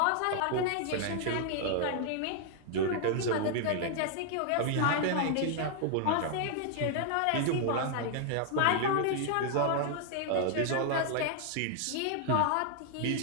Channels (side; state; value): both; different; correlation 0.00